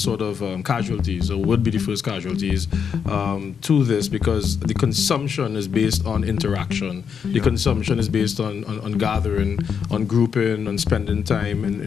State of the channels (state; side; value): quieter; right; 6.9 dB